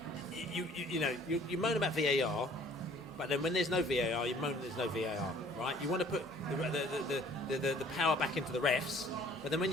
you moan about VAR, but then when there's no VAR, you moan there's no VAR, right? You want to put the power back into the refs, but then when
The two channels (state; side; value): normal; both; correlation 0.55